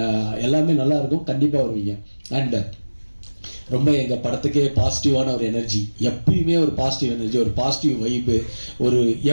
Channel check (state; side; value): inverted; both; correlation -1.00